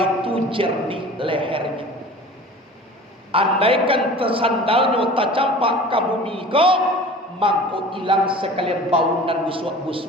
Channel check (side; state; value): both; normal; correlation 0.41